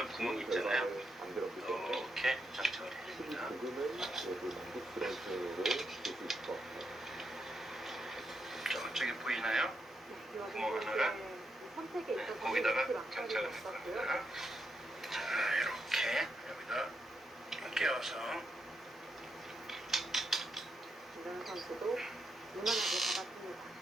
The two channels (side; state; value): both; normal; correlation 0.82